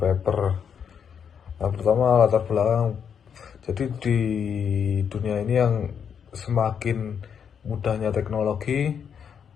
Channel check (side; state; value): right; quieter; 7.5 dB